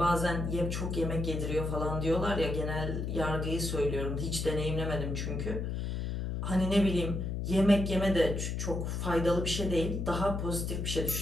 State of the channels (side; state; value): left; noise; hum, 2 dB below the sound